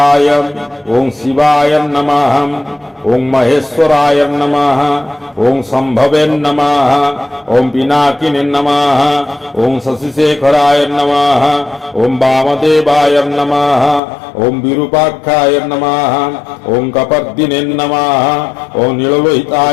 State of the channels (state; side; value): drops out; right; at 14.0 s